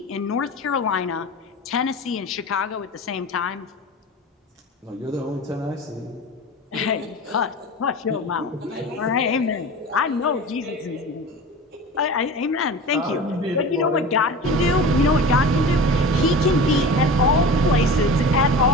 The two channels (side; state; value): both; normal; correlation 0.33